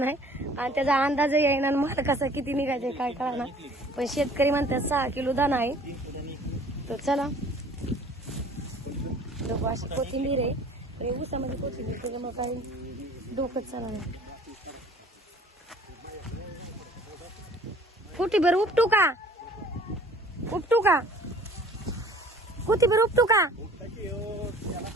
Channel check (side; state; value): both; normal; correlation 0.51